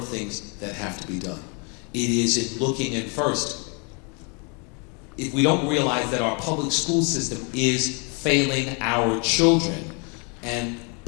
things that have to be done. It is in looking at first, if we don't realize that our public school system is failing our children, and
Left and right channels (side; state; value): right; quieter; 34.5 dB